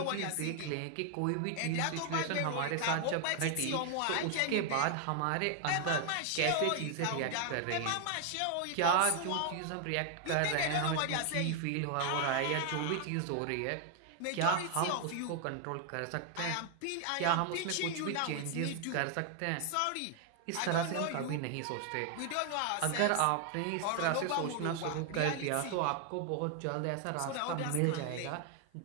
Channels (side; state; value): both; different; correlation 0.00